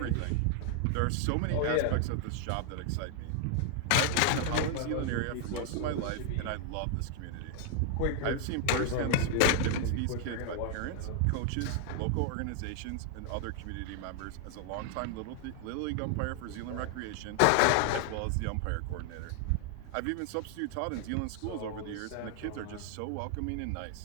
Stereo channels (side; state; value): both; different; correlation 0.00